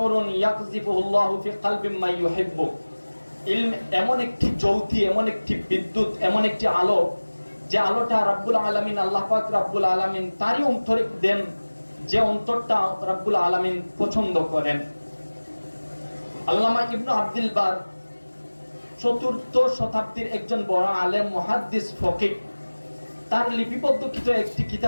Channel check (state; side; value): inverted; both; correlation -1.00